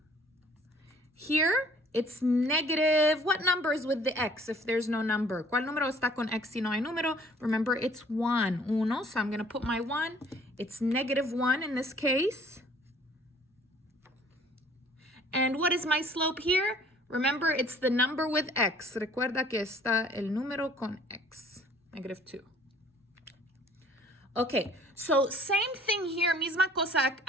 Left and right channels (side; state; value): both; normal; correlation 0.55